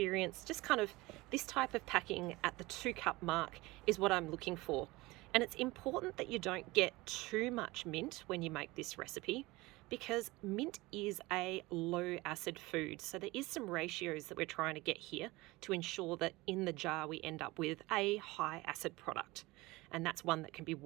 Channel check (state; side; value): quieter; left; 21.3 dB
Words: just kind of this type of packing at the 2 cup mark is what I'm looking for. And it's important that you don't get too much mint when you make this recipe, because mint is a low acid food. So there is some ratios that we're trying to get here to ensure that in the jar we end up with a high acid product. And that's one that can be